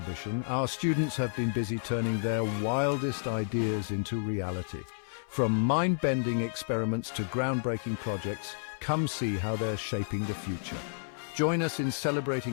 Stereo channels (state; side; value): silent; right; 55 dB below the other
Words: Our students have been busy turning their wildest ideas into reality. From mind-bending experiments to groundbreaking projects, come see how they're shaping the future. Join us in